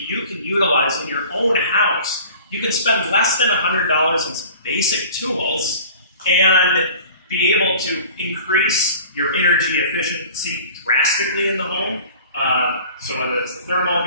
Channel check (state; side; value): inverted; both; correlation -0.44